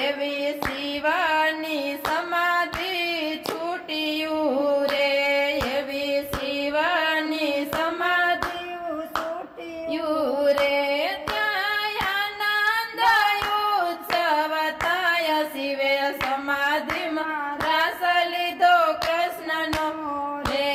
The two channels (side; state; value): both; identical; correlation 1.00